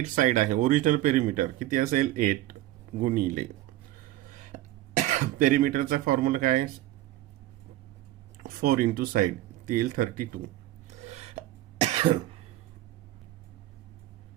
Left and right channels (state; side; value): quieter; left; 15.2 dB